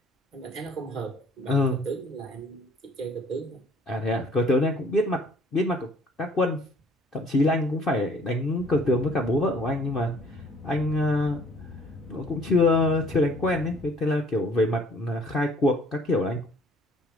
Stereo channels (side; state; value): both; normal; correlation 0.57